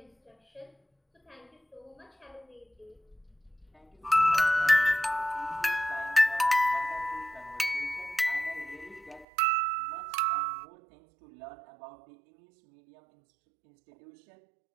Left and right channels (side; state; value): left; drops out; at 9.2 s